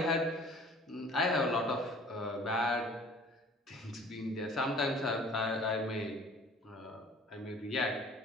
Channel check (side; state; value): both; normal; correlation 0.50